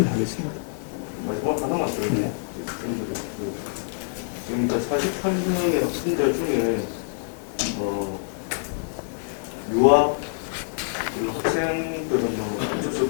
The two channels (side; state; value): right; silent; 61 dB below the other